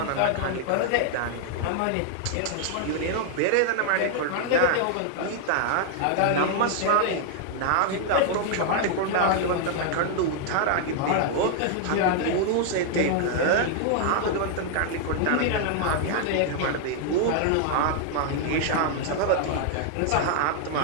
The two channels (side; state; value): both; different; correlation 0.00